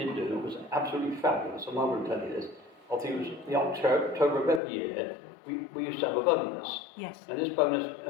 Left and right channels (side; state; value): right; drops out; at 4.6 s